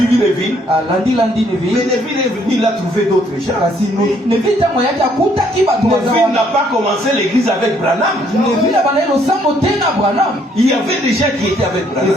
Neville. Landi Mais Neville. Neville est venu, il a trouvé d'autres gens. Kasi Neville tango yaki akutaki bato Neville n'a pas commencé l'église avec Branham. Neville abandaki losambo te na Branham. Il y avait des gens qui étaient avec Branham.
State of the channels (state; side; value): normal; both; correlation 0.66